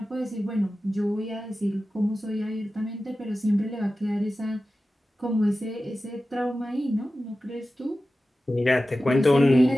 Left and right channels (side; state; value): both; normal; correlation 0.94